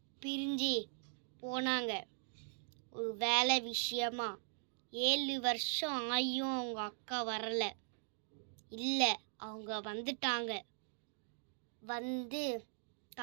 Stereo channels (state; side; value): silent; left; digital silence